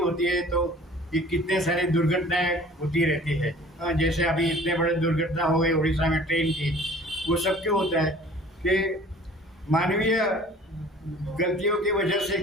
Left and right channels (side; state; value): both; normal; correlation 0.49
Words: है तो ये कितने सारी दुर्घटनाएं होती रहती है। जैसे अभी इतने बड़े दुर्घटना हो गई उड़ीसा में ट्रेन की, वो सब क्यों होता है कि मानवीय गलतियों की वजह से